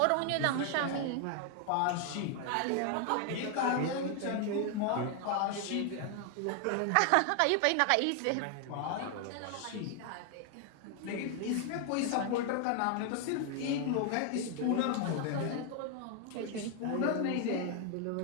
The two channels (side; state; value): both; different; correlation 0.00